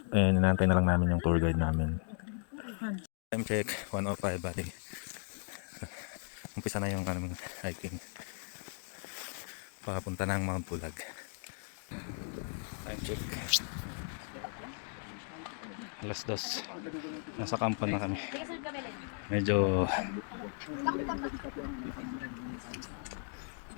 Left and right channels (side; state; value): right; silent; 54 dB below the other